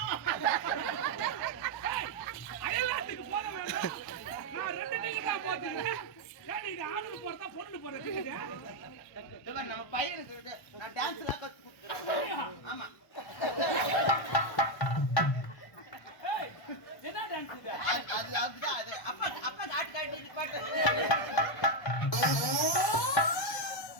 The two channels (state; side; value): late; right; 1.1 ms